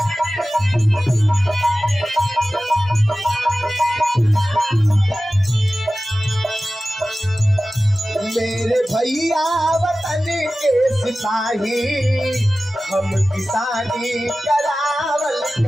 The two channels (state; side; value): normal; both; correlation 0.96